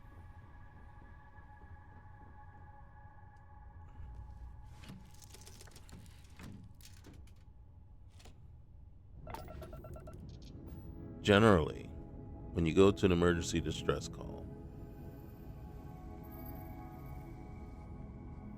Generally, when you go to an emergency distress call,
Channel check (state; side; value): identical; both; correlation 1.00